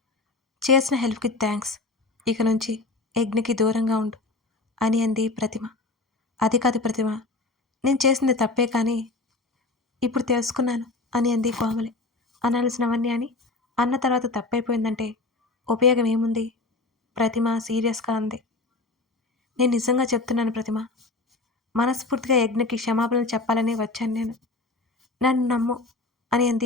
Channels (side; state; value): right; quieter; 3.4 dB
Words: చేసిన హెల్ప్కి థ్యాంక్స్. ఇక నుంచి యజ్ఞకి దూరంగా ఉండు అని అంది ప్రతిమ. అది కాదు ప్రతిమ, నేను చేసింది తప్పే కానీ ఇప్పుడు తెలుసుకున్నాను అని అంది కోమలి. అనాల్సినవన్నీ అని అన్న తర్వాత తప్పైపోయిందంటే ఉపయోగం ఏముంది? ప్రతిమ సీరియస్గా అంది. నేను నిజంగా చెప్తున్నాను ప్రతిమ. మనస్ఫూర్తిగా యజ్ఞకి క్షమాపణలు చెప్పాలని వచ్చాను నేను. నన్ను నమ్ము అని